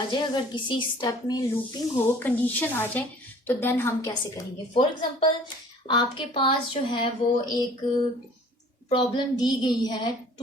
जाए। अगर किसी स्टेप में लूपिंग हो, कंडीशन आ जाए, तो देन हम कैसे करेंगे। फॉर एग्जांपल आपके पास जो है वो एक प्रॉब्लम दी गई है,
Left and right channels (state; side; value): normal; both; correlation 0.51